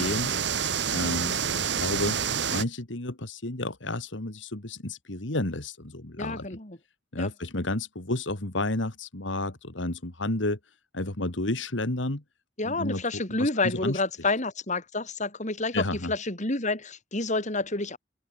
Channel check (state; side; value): normal; both; correlation 0.14